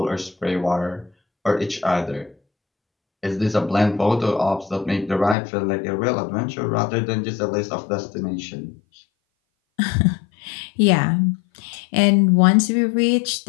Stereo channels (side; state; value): right; drops out; at 5.4 s